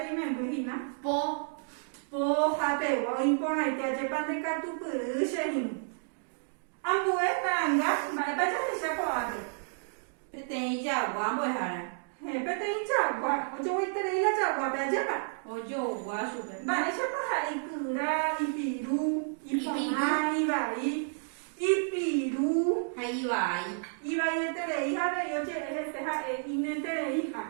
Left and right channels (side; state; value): left; silent; digital silence